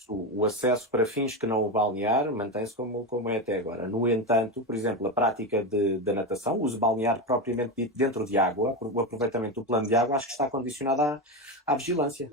o acesso para fins que não o balnear mantém-se como é até agora. No entanto, por exemplo, a prática da natação, o uso balnear propriamente dito dentro de água, o aproveitamento do plano de água, acho que está condicionado à vigilância.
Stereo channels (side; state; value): both; normal; correlation 0.16